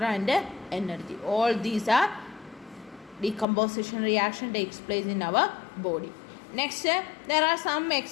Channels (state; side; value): drops out; right; at 3.5 s